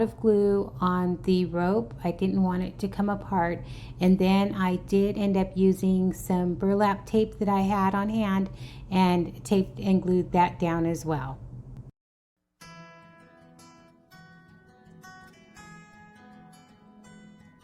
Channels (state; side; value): identical; both; correlation 1.00